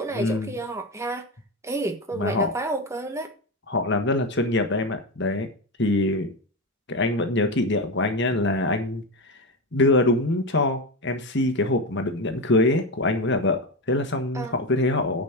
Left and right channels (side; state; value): both; normal; correlation 0.16